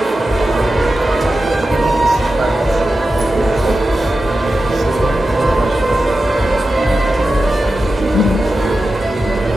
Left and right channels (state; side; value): normal; both; correlation 0.92